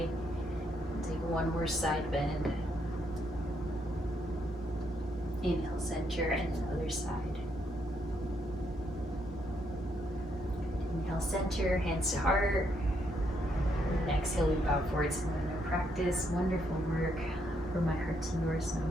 Take one more side bend. Inhale, center, and then other side. Inhale, center, hands to heart. And exhale, we bow forward to another practice. Wonderful work. From my heart to yours,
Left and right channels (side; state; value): both; normal; correlation 0.75